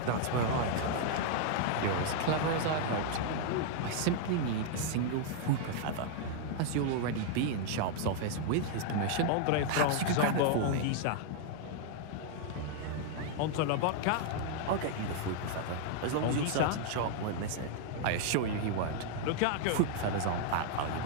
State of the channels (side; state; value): both; different; correlation 0.00